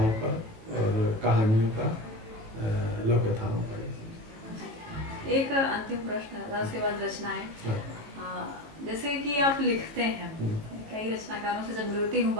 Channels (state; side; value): late; left; 18 ms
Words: का और कहानियों का, लोक कथाओं का। एक अंतिम प्रश्न है, उसके बाद रचनाएं। जैसे कि आप लिखते हैं, कई रचनाकारों से जब मिलती हूँ,